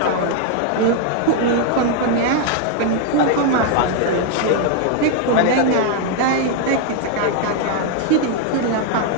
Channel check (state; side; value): different; both; correlation 0.00